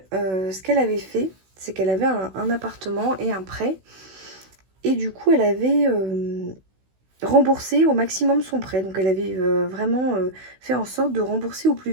ce qu'elle avait fait, c'est qu'elle avait un appartement et un prêt. Et du coup, elle avait remboursé au maximum son prêt. Donc elle avait vraiment fait en sorte de rembourser au plus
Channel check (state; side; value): late; left; 16 ms